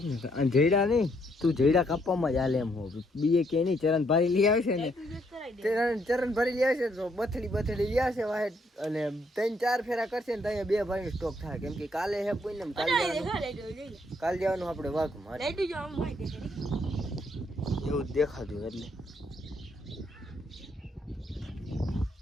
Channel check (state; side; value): normal; both; correlation 0.71